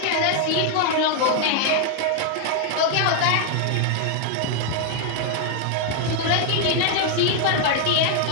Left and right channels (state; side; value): different; both; correlation 0.00